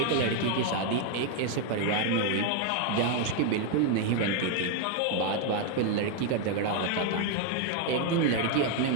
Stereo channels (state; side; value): different; both; correlation 0.01